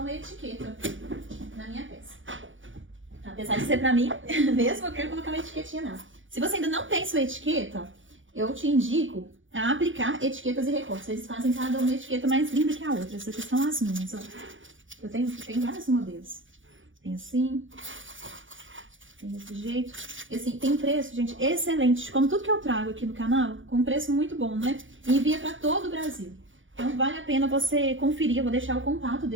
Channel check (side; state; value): left; late; 0.57 ms